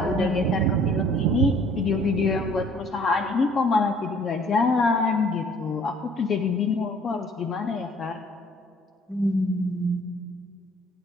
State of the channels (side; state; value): both; normal; correlation 0.56